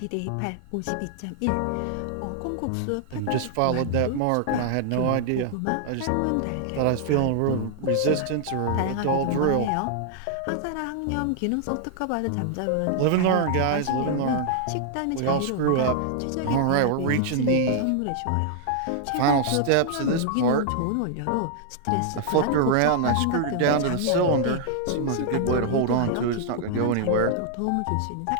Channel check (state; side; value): different; both; correlation -0.01